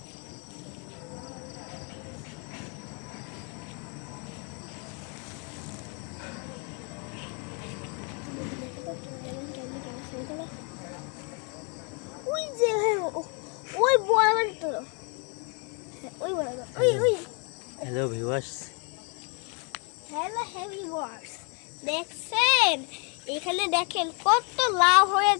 ওই যে ওই বরাবর তো ওই বরাবর ওই হ্যালো ভিউয়ার্স, হ্যালো ভিউয়ার্স, দেখছেন এখানে দেখেন কত লাউ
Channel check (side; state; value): right; quieter; 36.0 dB